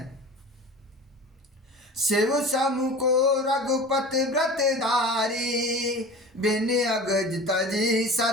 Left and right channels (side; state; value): both; normal; correlation 0.37